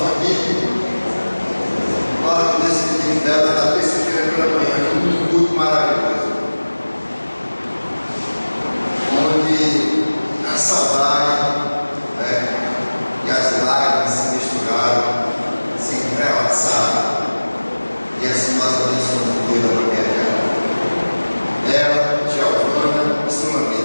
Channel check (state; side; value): inverted; both; correlation -1.00